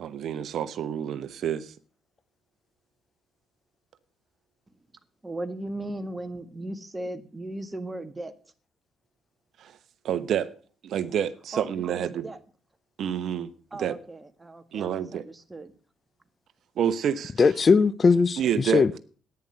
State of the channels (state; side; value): normal; both; correlation 0.75